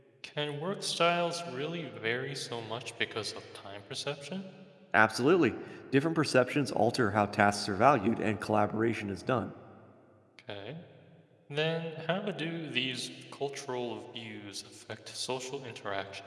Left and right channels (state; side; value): identical; both; correlation 1.00